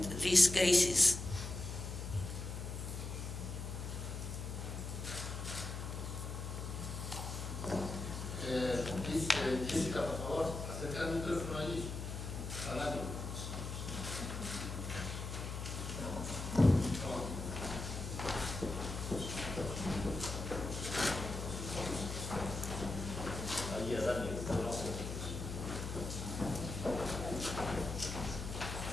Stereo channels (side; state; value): left; noise; hum, 6 dB below the sound